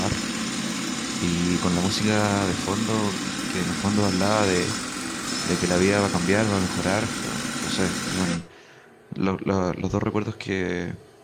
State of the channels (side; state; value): both; identical; correlation 1.00